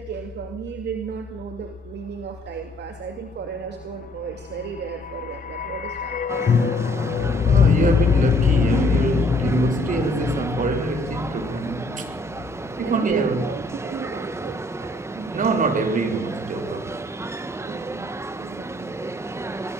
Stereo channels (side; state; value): both; normal; correlation 0.62